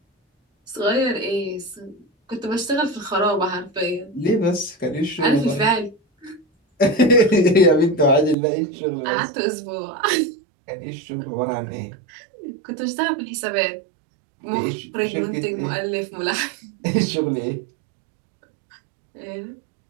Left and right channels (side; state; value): left; drops out; at 8.3 s